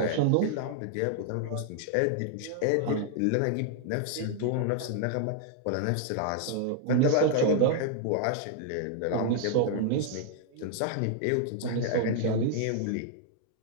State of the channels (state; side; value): different; both; correlation 0.00